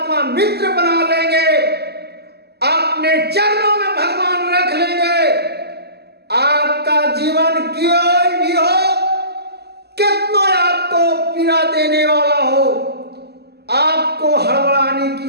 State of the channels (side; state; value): left; late; 0.47 ms